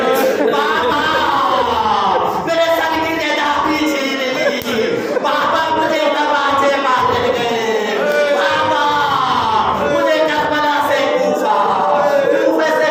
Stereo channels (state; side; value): identical; both; correlation 1.00